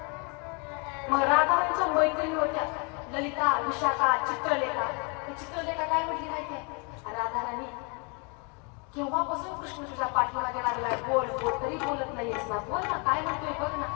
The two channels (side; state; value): right; quieter; 34.0 dB